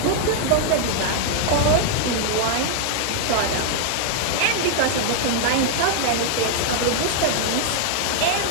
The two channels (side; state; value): both; different; correlation 0.00